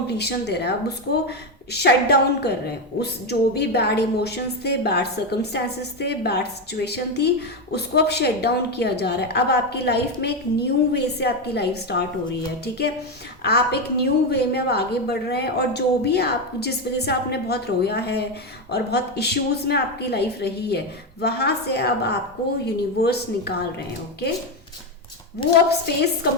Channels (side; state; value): both; normal; correlation 0.10